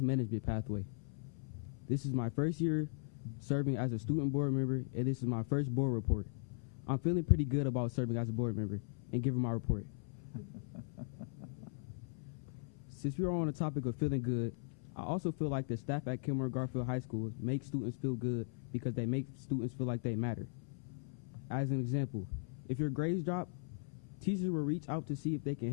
pathway. This is my first year serving as a student board member, and this is my first board report. I'm feeling pretty good about serving as a board member and giving my report. Since we are on the topic of feeling good, I also feel like the staff at Kenmore Garfield High School make students feel good because they make students feel like they matter. As an example, if your grades drop, teachers will reach out to see if they can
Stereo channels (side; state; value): right; silent; 52 dB below the other